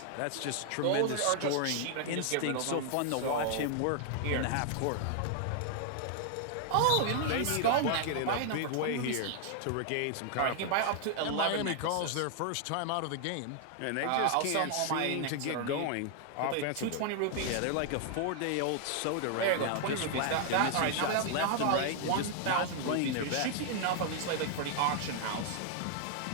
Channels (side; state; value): both; different; correlation 0.00